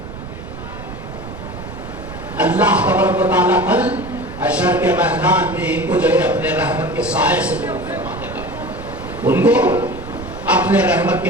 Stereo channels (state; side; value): noise; right; rumble, 12 dB below the sound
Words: اللہ تبارک و تعالیٰ کل حشر کے میدان میں ان کو جو ہے اپنے رحمت کے سائے سے دور فرما دے گا، ان کو اپنے رحمت